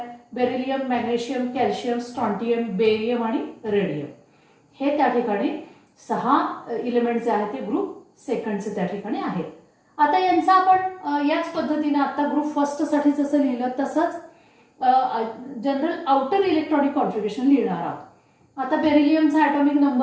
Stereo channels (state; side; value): identical; both; correlation 1.00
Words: beryllium, magnesium, calcium, strontium, barium आणि रेडियम. हे त्या ठिकाणी 6 इलेमेंट जे आहेत ते ग्रुप सेकंडचे त्या ठिकाणी आहेत. आता यांचा आपण याच पद्धतीने आता ग्रुप फर्स्टसाठी जसं लिहिलं तसंच जनरल आउटर इलेक्ट्रॉनिक कॉन्फिगरेशन लिहिणार आहोत. आता बेरिलियमचा ॲटॉमिक